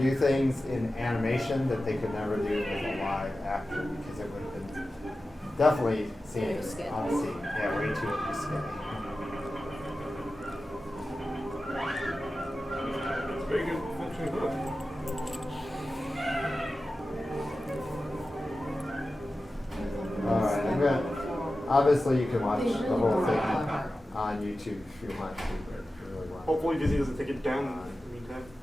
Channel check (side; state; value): both; normal; correlation 0.94